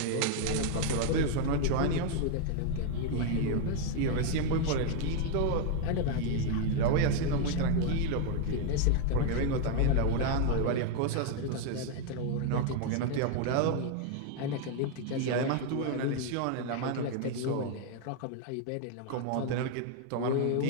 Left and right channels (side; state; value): both; different; correlation 0.00